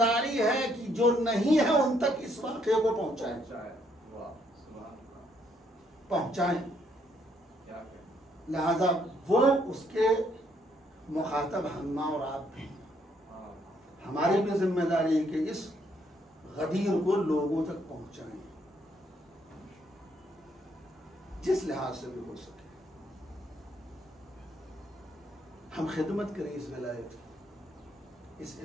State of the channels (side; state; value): both; normal; correlation 0.71